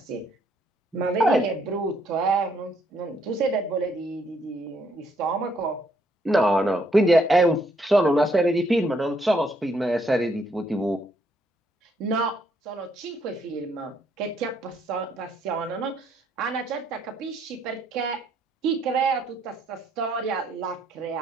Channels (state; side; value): normal; both; correlation 0.71